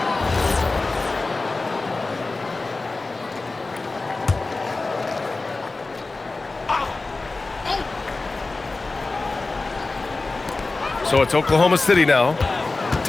So it's Oklahoma City now.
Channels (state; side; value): quieter; right; 3.5 dB